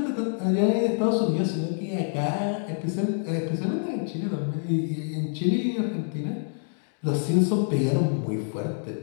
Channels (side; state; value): right; silent; digital silence